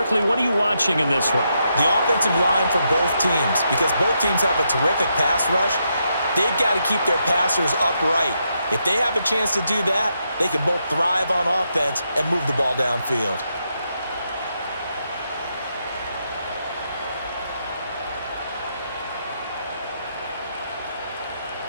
what are you watching in this one? The offensive line for both teams, because both teams have a terrific pass rush. They've got to keep their passers upright. If they have a chance to do that, they can both thrive on offense and move the ball downfield.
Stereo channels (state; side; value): inverted; both; correlation -0.81